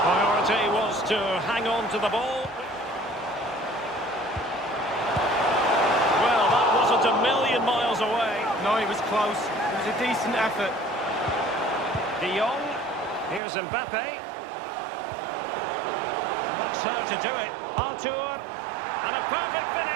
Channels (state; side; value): drops out; left; at 13.4 s